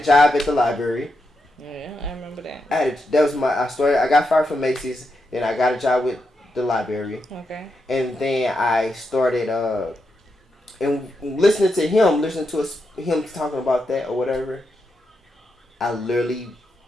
job at the library. Yeah, I remember that. I got fired from Macy's. Then I got a job with the library. Okay. And then I started and listening to him talking about that or whatever. I literally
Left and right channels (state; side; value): normal; both; correlation 0.85